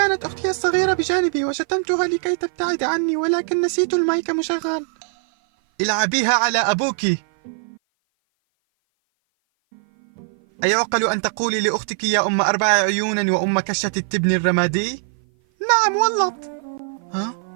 أختي الصغيرة بجانبي وشتمتها لكي تبتعد عني، ولكن نسيت المايك مشغل. العبيها على أبوك. أيعقل أن تقولي لأختك يا أم 4 عيون وأم كشة التبن الرمادي؟ نعم والله. ها؟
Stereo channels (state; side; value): silent; left; 56 dB below the other